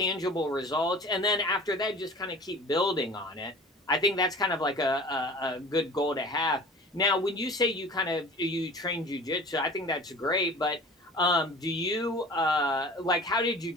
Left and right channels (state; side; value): normal; both; correlation 0.41